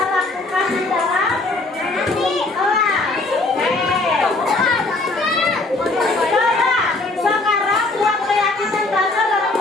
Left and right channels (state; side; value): quieter; right; 3.1 dB